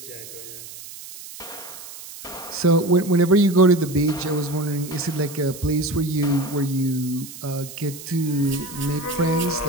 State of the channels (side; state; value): right; noise; hiss, 14 dB below the sound